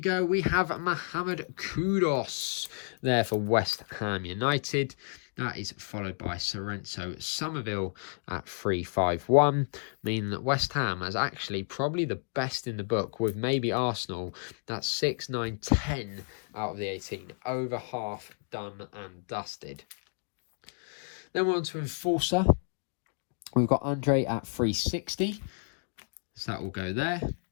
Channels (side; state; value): right; silent; digital silence